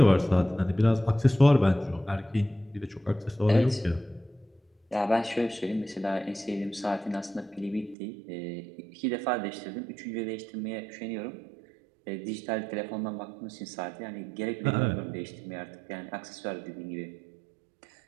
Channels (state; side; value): drops out; left; at 8.0 s